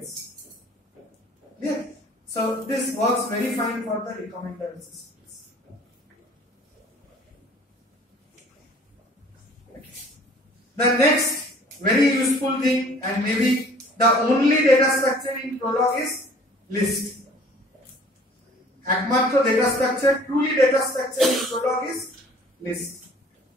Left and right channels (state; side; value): normal; both; correlation 0.51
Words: Yeah. So this works very fine for the recommender systems. The next very useful thing, and maybe the only data structure in Prolog, is list. Ekmatro data structure, truly data structure in Prolog is list.